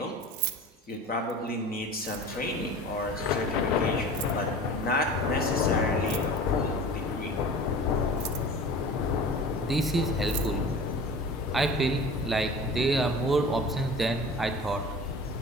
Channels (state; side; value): normal; both; correlation 0.39